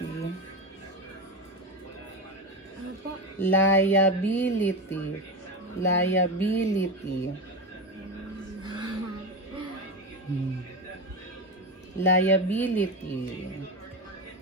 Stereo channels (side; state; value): both; normal; correlation 0.18